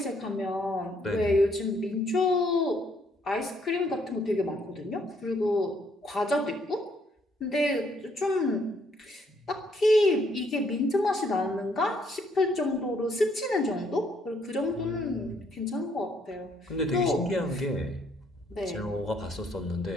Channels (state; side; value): normal; both; correlation 0.69